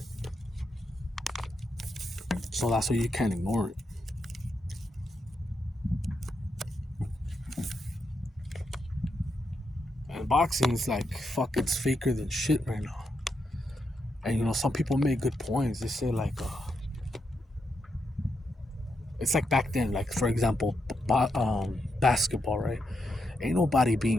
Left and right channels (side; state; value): both; normal; correlation 0.83